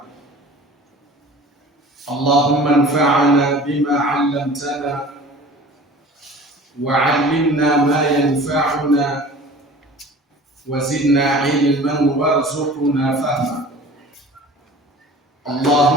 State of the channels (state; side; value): normal; both; correlation 0.43